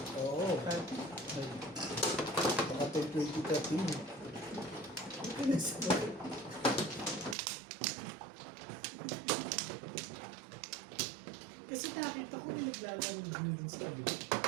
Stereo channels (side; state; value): left; drops out; at 7.4 s